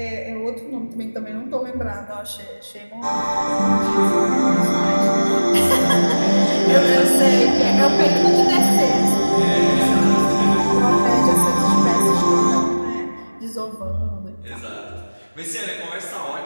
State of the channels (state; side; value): inverted; both; correlation -1.00